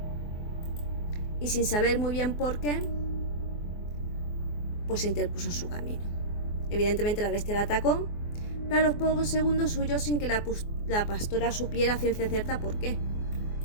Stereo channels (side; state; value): right; late; 24 ms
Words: y sin saber muy bien por qué, pues se interpuso en su camino. Evidentemente la bestia la atacó, pero a los pocos segundos huyó sin que la pastora supiera a ciencia cierta por qué.